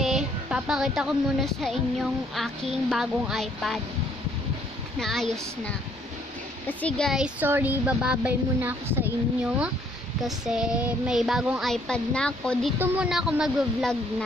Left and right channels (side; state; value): both; normal; correlation 0.65